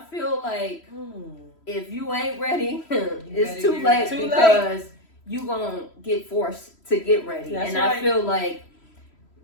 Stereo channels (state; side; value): late; right; 3.1 ms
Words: feel like if you ain't ready, better it's too get late ready. because you gonna get forced to get ready. That's and right. I feel like